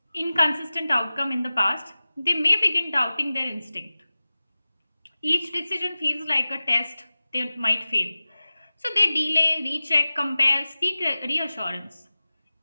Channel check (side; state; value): both; inverted; correlation -0.96